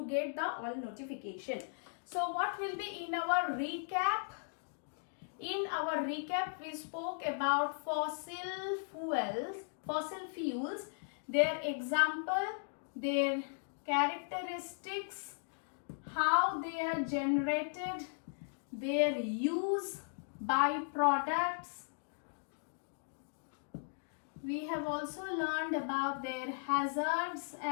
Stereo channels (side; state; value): right; silent; digital silence